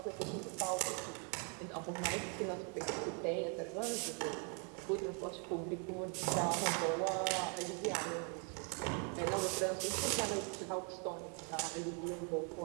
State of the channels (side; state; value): left; quieter; 38.6 dB